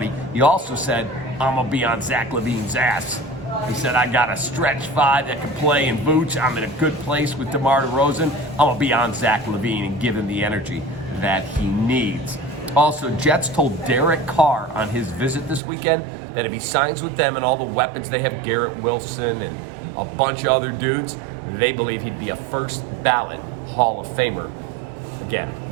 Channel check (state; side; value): drops out; left; at 15.6 s